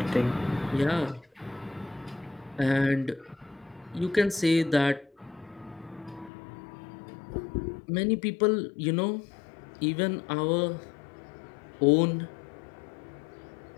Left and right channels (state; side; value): drops out; right; at 6.3 s